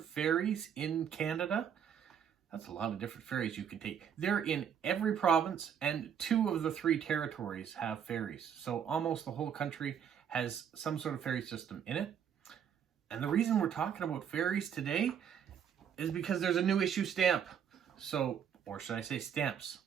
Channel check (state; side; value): quieter; left; 8.3 dB